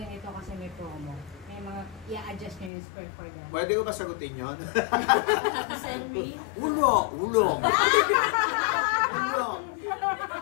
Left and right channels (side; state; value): right; drops out; at 2.7 s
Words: kasi may promo. May mga, i-adjust nyo yung script for them. Pwede ko ba sagutin yun? Send me? Ulo!